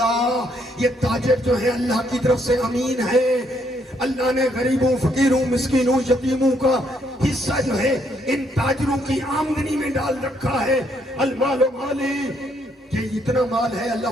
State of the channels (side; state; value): both; normal; correlation 0.72